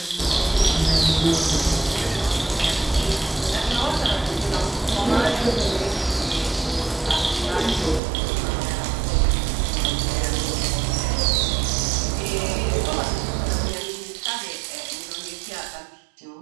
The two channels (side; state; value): left; drops out; at 8.0 s